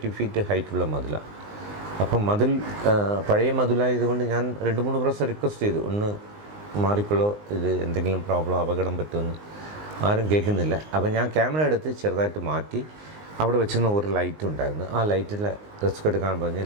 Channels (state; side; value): late; left; 19 ms